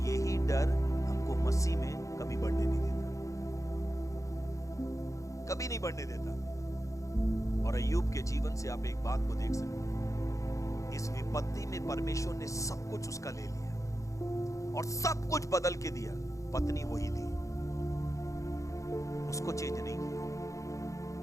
यही डर हमको मसीह में कभी बढ़ने नहीं देता, कभी नहीं बढ़ने देता। और अय्यूब के जीवन से आप एक बात को देख सकते हैं, इस विपत्ति में परमेश्वर ने सब कुछ उसका ले लिया और सब कुछ बदल के दिया। पत्नी वही थी, उसको चेंज नहीं किया।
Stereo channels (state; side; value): late; right; 0.15 ms